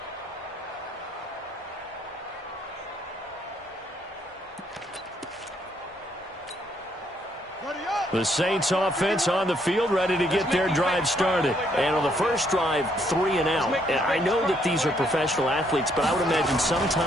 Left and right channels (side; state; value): both; normal; correlation 0.70